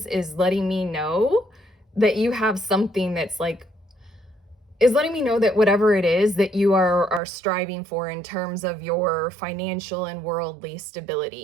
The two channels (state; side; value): drops out; left; at 7.2 s